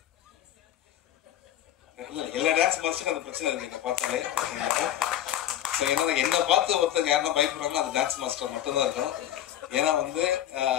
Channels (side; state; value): right; quieter; 11.6 dB